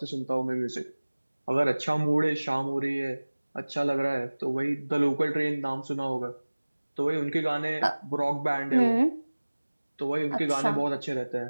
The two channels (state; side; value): inverted; both; correlation -1.00